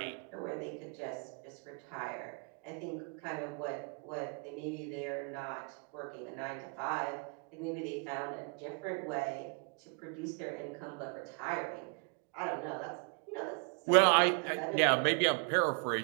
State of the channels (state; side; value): quieter; left; 36.9 dB